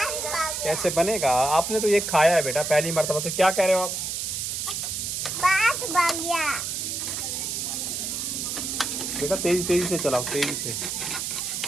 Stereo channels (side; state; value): right; noise; hiss, 3 dB below the sound